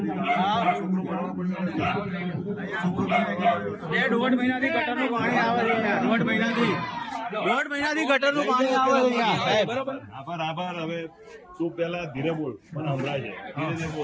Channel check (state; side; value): identical; both; correlation 1.00